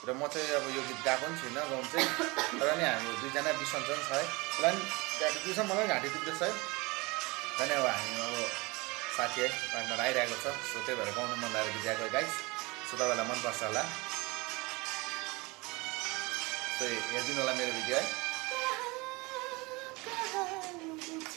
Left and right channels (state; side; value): quieter; left; 25.0 dB